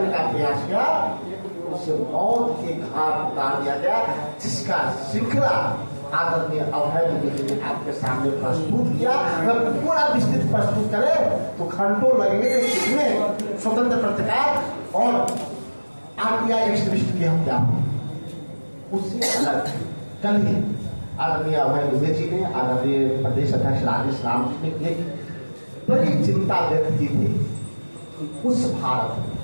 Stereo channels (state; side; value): inverted; both; correlation -1.00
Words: का प्रयास किया, उसे मौत के घाट उतार दिया गया, जिसका श्रृंखला आदरणीय अभय दुबे जी ने आपके सामने प्रस्तुत किया। अगर पूरा विस्तृत प्रस्तुत करें तो घंटों लगेंगे, इसमें स्वतंत्र पत्रकार और आरटीआई एक्टिविस्ट की हत्या उससे अलग। कल ही आदरणीय अभय दुबे जी ने, आदरणीय प्रदेश अध्यक्ष राजेश राम जी ने एक बड़ी चिंता व्यक्त की थी उस भारत में